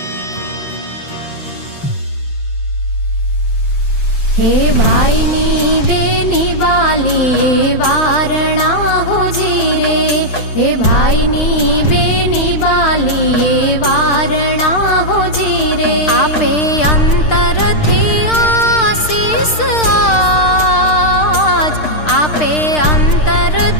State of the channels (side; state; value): right; late; 6.6 ms